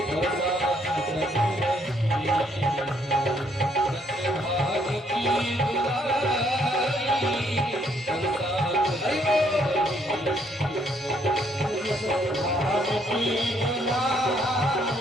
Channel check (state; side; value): normal; both; correlation 0.69